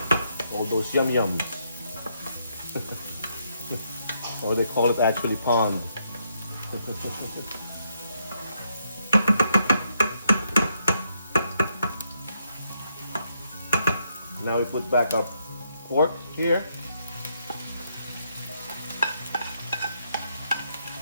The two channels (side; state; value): both; inverted; correlation -0.76